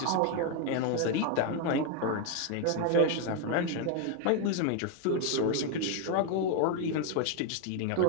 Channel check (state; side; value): different; both; correlation 0.01